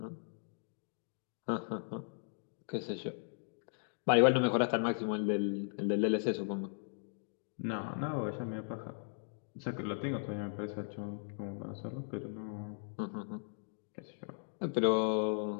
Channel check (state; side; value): silent; right; digital silence